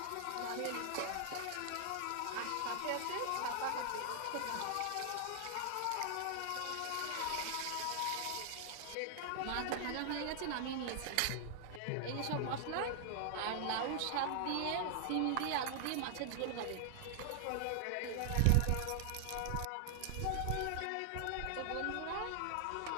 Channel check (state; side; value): different; both; correlation 0.00